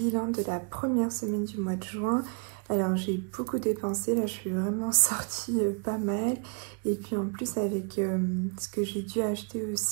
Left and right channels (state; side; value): quieter; left; 37.3 dB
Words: de la première semaine du mois de juin. Alors j'ai beaucoup dépensé, là je suis vraiment sortie pas mal. Et puis en plus avec ce que j'ai dû acheter